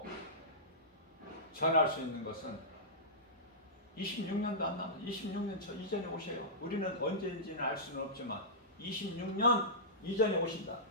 전할 수 있는 것은 26년도 안 남았어. 26년 저 이전에 오셔요. 우리는 언제인지는 알 수는 없지만 26년 이전에 오신다.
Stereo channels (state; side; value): normal; both; correlation -0.16